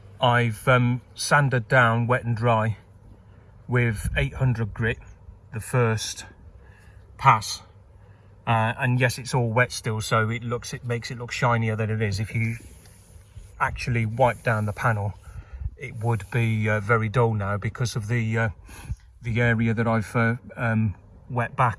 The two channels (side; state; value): both; identical; correlation 1.00